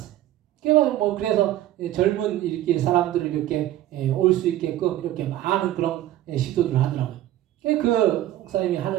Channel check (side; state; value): left; quieter; 13.7 dB